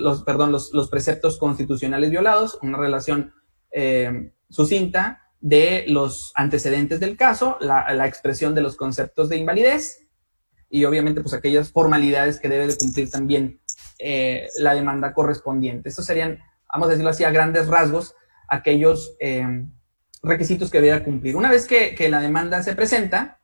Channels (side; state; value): both; inverted; correlation -1.00